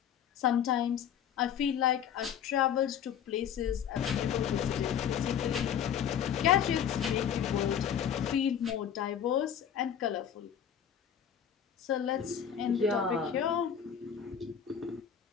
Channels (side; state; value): right; quieter; 8.6 dB